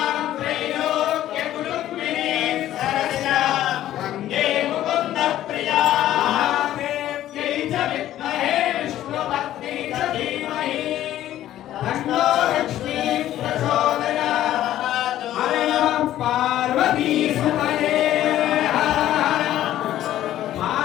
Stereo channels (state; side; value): quieter; right; 13.0 dB